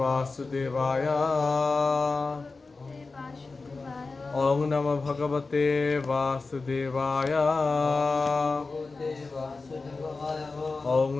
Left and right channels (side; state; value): right; quieter; 3.9 dB